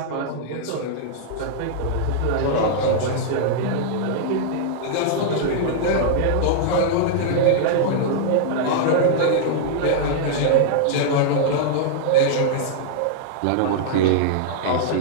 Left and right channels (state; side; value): different; both; correlation -0.01